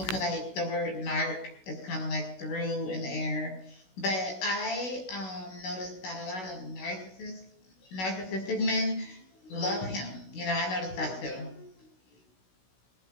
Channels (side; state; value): right; late; 16 ms